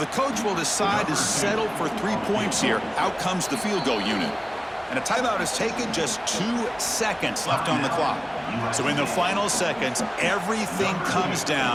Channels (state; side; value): identical; both; correlation 1.00